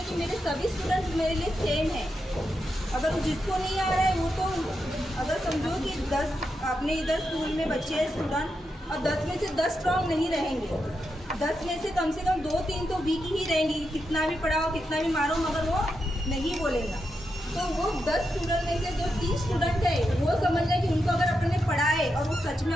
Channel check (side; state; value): both; normal; correlation 0.85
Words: है कि मेरे सभी स्टूडेंट्स मेरे लिए सेम है। अगर जिसको नहीं आ रहा है वो तो अगर समझो कि 10 अपने इधर स्कूल में बच्चे हैं स्टूडेंट और 10 में से 10 स्ट्रॉन्ग नहीं रहेंगे, 10 में से कम 2-3 तो वीक ही रहेंगी। कितना भी पढ़ाओ कितना भी मारो मगर वो नहीं बोलेगा। तो वो 10 स्टूडेंट में से जो 3 स्टूडेंट है वो समझ लें कि उनको अगर अपन ने पढ़ाए और वो सच में